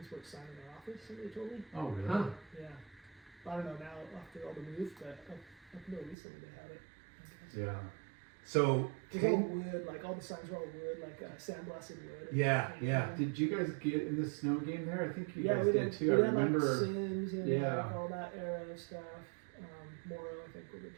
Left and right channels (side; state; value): left; drops out; at 6.2 s